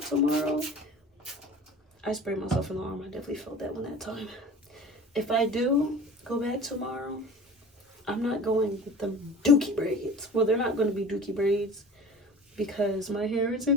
tomorrow, I sprayed myself in the arm. I definitely felt that one that time. If I do go back tomorrow, I'm not going with the dookie braids. Well, they're not going to be dookie braids because my hair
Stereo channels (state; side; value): normal; both; correlation 0.40